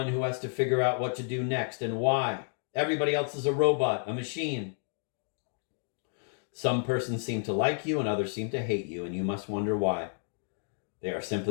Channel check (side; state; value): right; silent; 57 dB below the other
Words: who has to figure out what to do next and why. Everybody else is a robot, a machine. Some persons seem to like you and others seem to hate you, and you must wonder why. They are